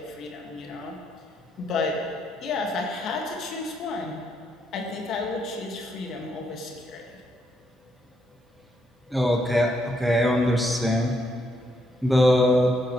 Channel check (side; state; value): both; normal; correlation 0.76